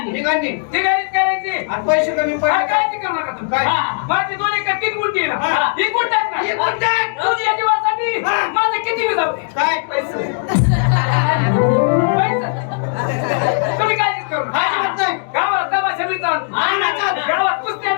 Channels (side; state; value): right; silent; digital silence